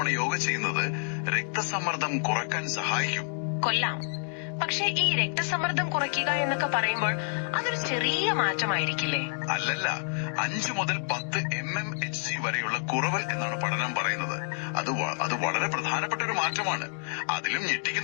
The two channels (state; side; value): silent; right; 59 dB below the other